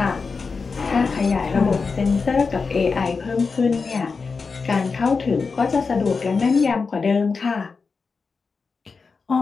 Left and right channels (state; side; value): quieter; right; 4.8 dB